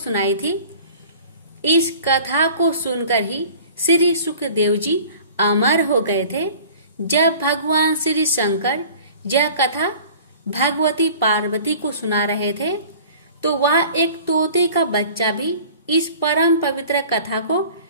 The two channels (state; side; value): inverted; both; correlation -0.46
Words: थी। इस कथा को सुनकर ही श्री सुखदेव जी अमर हो गए थे। जब भगवान श्री शंकर यह कथा भगवती पार्वती को सुना रहे थे तो वह एक तोते का बच्चा भी इस परम पवित्र कथा को